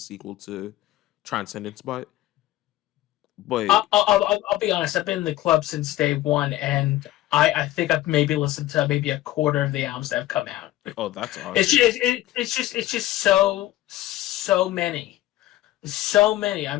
to Transcendence. But I'll be honest. I've been in the club since day one, and I think I've maybe listened to maybe a quarter of the albums that have come out. oh, that's It's awesome. just it's just so many. I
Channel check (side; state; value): right; quieter; 15.6 dB